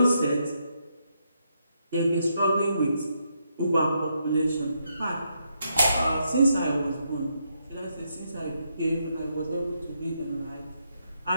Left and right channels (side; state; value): both; inverted; correlation -0.79